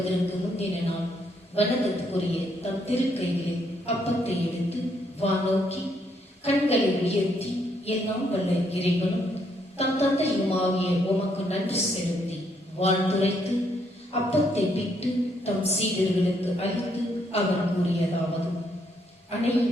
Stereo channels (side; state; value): both; normal; correlation 0.73